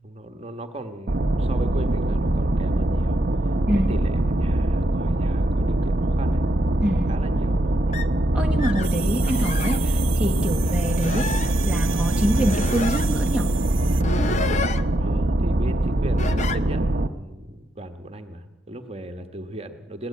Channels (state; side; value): normal; both; correlation 0.81